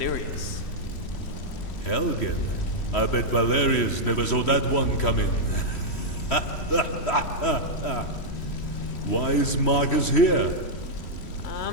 Helgen? I bet Valerius never saw that one coming. Why is Marcus here?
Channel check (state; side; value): late; right; 3.1 ms